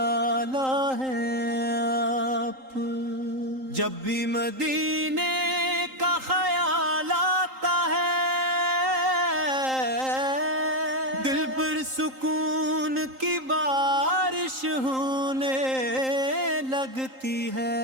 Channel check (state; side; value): late; left; 3.8 ms